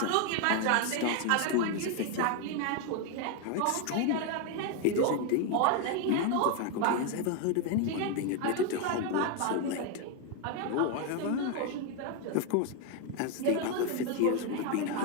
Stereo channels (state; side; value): different; both; correlation 0.01